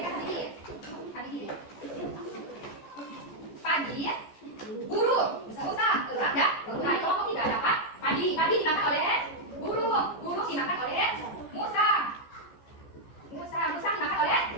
tadi. Padi, burung, musa, elang, dan mulai kelompok tiga dapat padi, padi dimakan oleh burung, burung dimakan oleh musa, musa dimakan oleh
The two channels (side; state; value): right; late; 14 ms